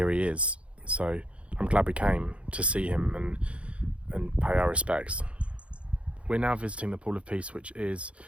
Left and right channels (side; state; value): left; late; 0.061 ms